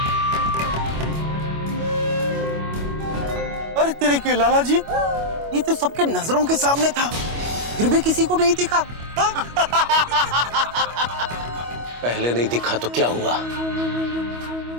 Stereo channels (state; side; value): late; left; 25 ms